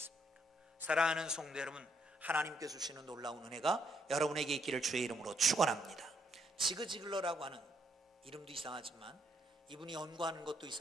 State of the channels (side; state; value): both; normal; correlation 0.73